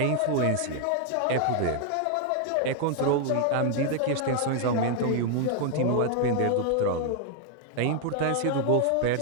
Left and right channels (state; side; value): different; both; correlation 0.00